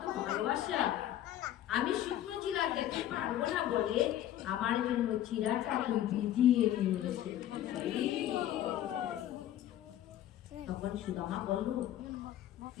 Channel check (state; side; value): quieter; right; 12.2 dB